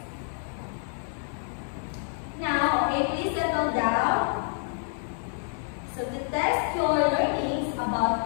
Now, okay, please settle down. So to test your learnings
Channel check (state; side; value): silent; right; 59 dB below the other